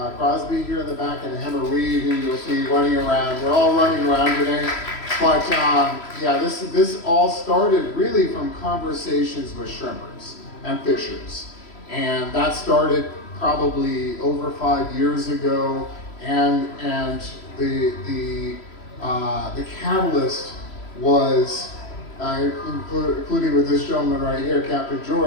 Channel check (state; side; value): late; right; 3.0 ms